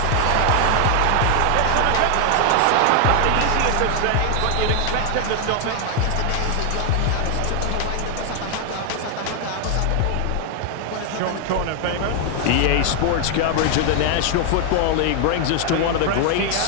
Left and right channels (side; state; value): both; different; correlation 0.00